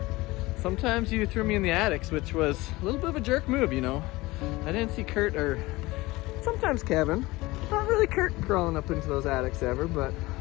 Sometimes you threw me in the attics, which was a little bit of a jerk move, you know. I didn't see Kurt, or sometimes Kevin, not really Kurt crawling up into those attics ever, but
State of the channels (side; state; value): right; quieter; 20.6 dB